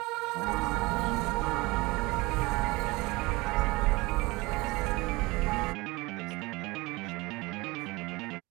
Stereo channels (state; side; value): quieter; left; 23.2 dB